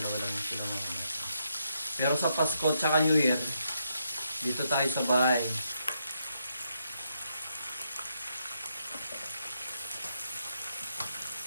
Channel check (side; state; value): both; inverted; correlation -0.79